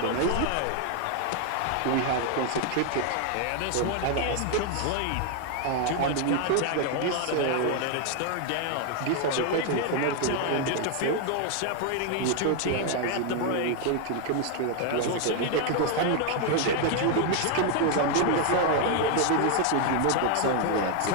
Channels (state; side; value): different; both; correlation 0.01